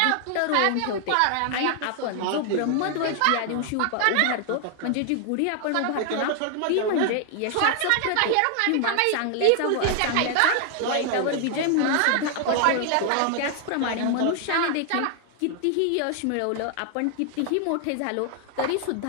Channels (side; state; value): both; different; correlation 0.00